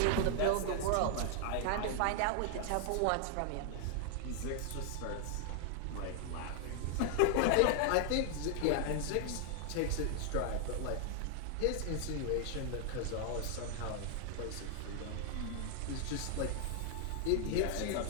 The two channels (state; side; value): different; both; correlation 0.00